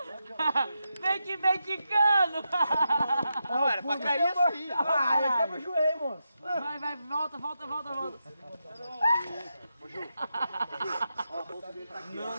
Vem que vem quicando. Não, era pra cair assim. Ah, quebra o joelho, moço. Vai, volta.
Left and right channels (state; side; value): inverted; both; correlation -0.86